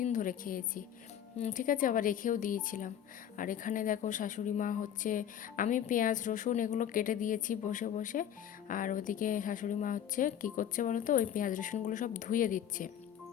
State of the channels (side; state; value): right; quieter; 9.9 dB